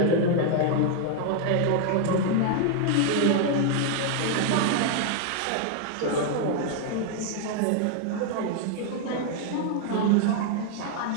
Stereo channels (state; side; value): different; both; correlation 0.00